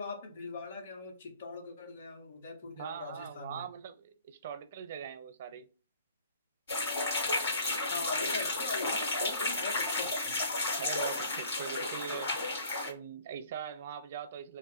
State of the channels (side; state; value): both; inverted; correlation -0.52